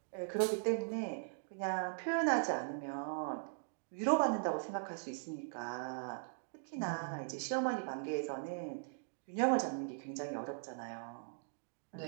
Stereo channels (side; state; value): left; silent; digital silence